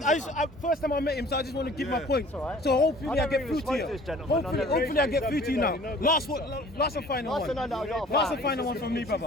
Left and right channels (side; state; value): both; normal; correlation 0.49